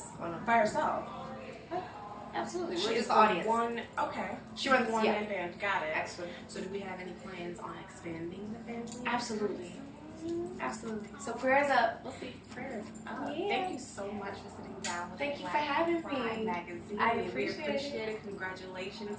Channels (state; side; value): identical; both; correlation 1.00